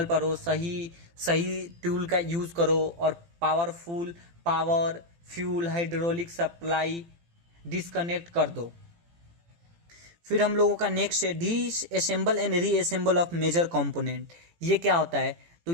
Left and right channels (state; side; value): late; left; 18 ms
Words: पढ़ो, सही टूल का यूज करो, और power, fuel, hydraulic supply disconnect कर दो। फिर हम लोगों का नेक्स्ट है disassemble and reassemble of major component. ये क्या होता है, तो